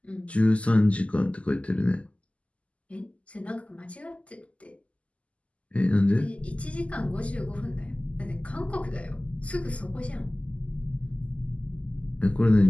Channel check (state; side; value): late; right; 0.063 ms